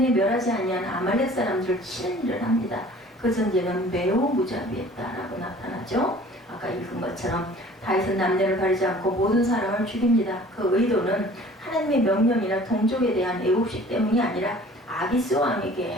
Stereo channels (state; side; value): normal; both; correlation 0.49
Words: 멸하지 아니한 아말렉 사람들을 치는 일을 합니다. 그 전쟁은 매우 무자비했다라고 나타나죠. 아까 읽은 것처럼 다윗은 남녀를 가리지 않고 모든 사람을 죽입니다. 그 의도는 하나님의 명령이나 동족에 대한 애국심 때문이 아니라 아기스